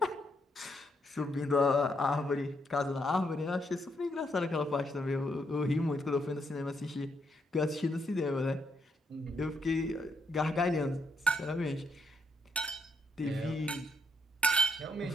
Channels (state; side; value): normal; both; correlation 0.77